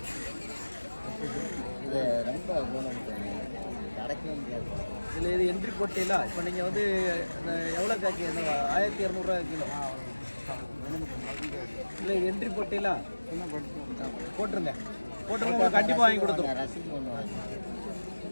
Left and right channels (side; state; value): both; inverted; correlation -1.00